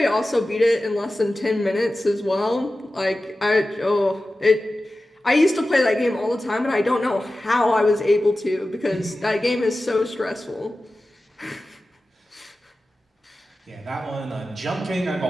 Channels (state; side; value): normal; both; correlation 0.95